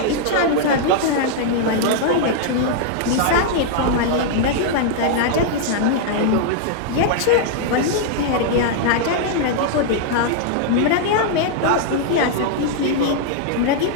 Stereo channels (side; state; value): both; different; correlation -0.01